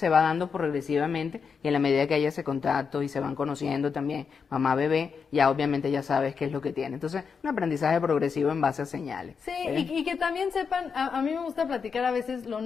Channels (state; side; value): quieter; right; 5.9 dB